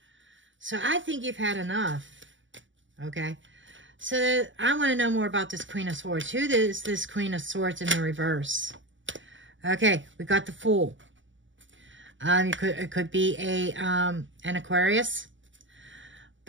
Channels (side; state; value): left; late; 0.55 ms